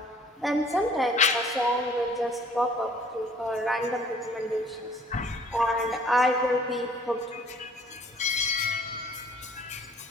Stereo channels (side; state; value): both; normal; correlation 0.55